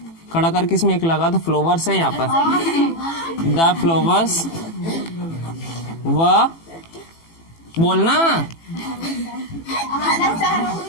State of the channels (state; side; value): late; right; 18 ms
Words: खड़ा कर किसमें एक लगा तो फ्लावर्स है यहाँ पर। द फ्लावर्स व बोलना